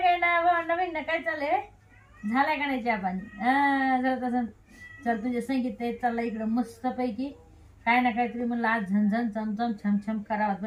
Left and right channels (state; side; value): identical; both; correlation 1.00